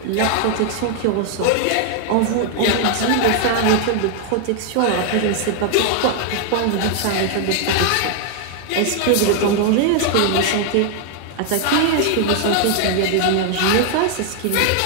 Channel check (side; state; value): both; different; correlation 0.00